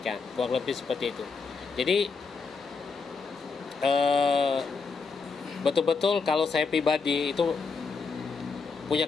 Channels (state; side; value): quieter; right; 4.9 dB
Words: Kurang lebih seperti itu. Jadi betul-betul kalau saya pribadi itu